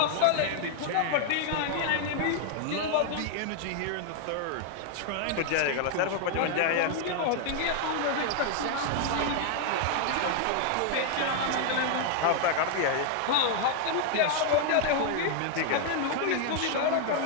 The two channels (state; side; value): different; both; correlation 0.00